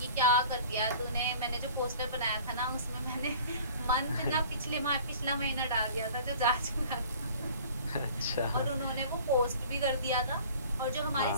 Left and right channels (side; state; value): both; inverted; correlation -0.47